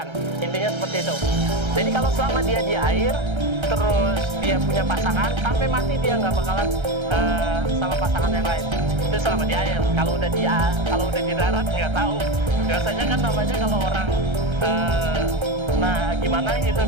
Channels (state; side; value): late; left; 1.3 ms